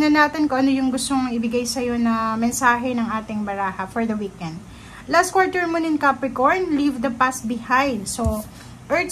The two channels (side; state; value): both; identical; correlation 1.00